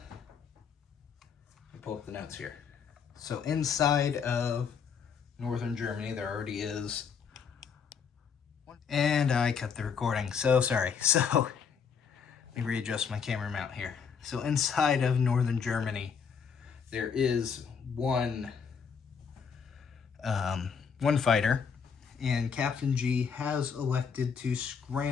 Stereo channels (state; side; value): quieter; right; 6.4 dB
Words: let me pull up the notes here. So inside of northern Germany, there already is, and I cut the recording, so sorry. So let me readjust my camera mount here. So inside of northern Germany, there is one fighter, and Captain G has elected to